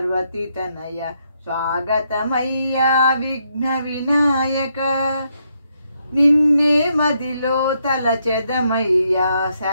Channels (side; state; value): both; inverted; correlation -0.77